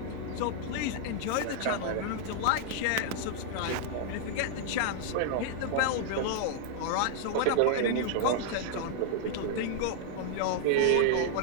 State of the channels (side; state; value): both; different; correlation 0.00